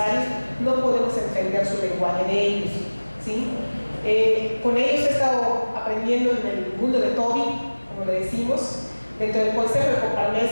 no podemos entender su lenguaje de ellos, ¿sí? Con ellos he estado aprendiendo en el mundo de Toby, como le decimos, dentro del consejo de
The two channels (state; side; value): inverted; both; correlation -1.00